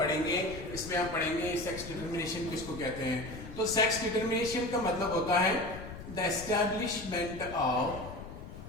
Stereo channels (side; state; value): left; noise; rumble, 12 dB below the sound